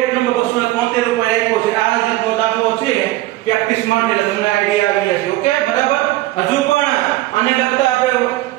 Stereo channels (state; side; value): quieter; left; 17.0 dB